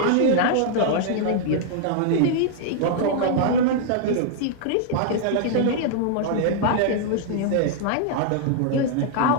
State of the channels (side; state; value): both; different; correlation -0.01